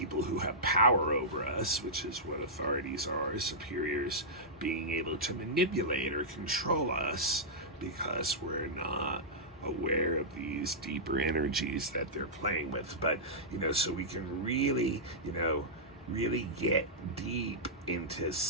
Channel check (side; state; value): both; normal; correlation -0.12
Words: who have power over us, which is what authorities are, superiors, being able to manipulate or control us because we're not aware of these deeper energies that they're playing with. But so we can really really get deep into